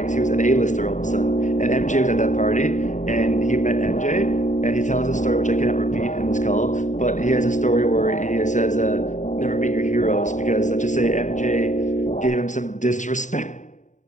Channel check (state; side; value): late; right; 0.36 ms